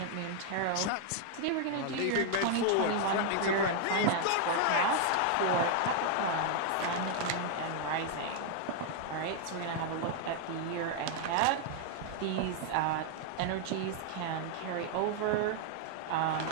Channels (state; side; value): different; both; correlation 0.00